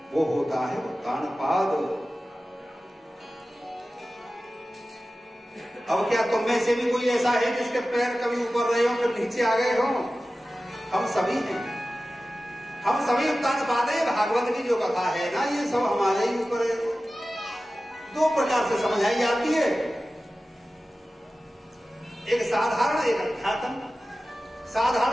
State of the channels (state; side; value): normal; both; correlation 0.95